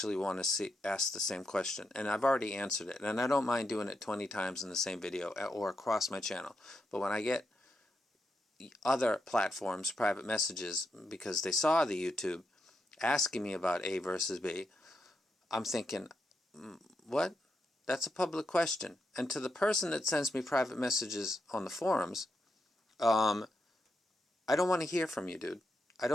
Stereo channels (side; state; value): both; normal; correlation 0.84